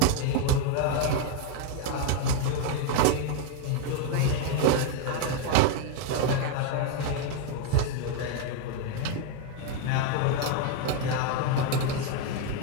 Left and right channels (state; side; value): different; both; correlation 0.01